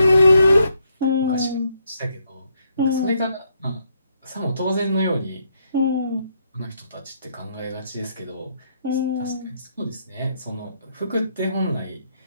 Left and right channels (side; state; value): both; inverted; correlation -0.75